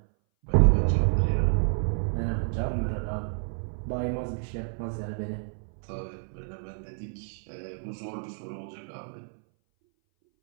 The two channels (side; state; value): left; silent; 58 dB below the other